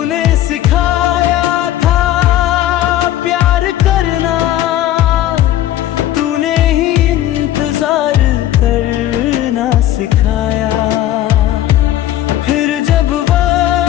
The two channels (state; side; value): quieter; right; 13.1 dB